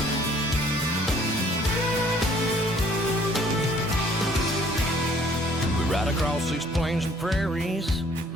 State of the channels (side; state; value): both; normal; correlation 0.59